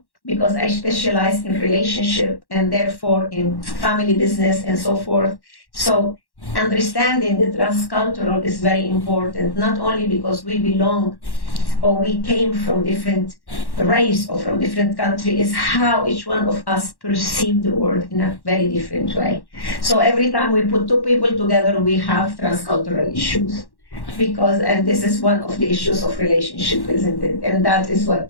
because I specialize in relationship and therefore in family business and so forth. So understanding the transcultural is very important, not only because we belong or we came from different race or from different country, is how each one of us perceive the world in a very different way. So every time we put two people together, we have transcultural issues. And this is one of the issues of relationship, isn't it? And that is what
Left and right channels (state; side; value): late; right; 1.1 ms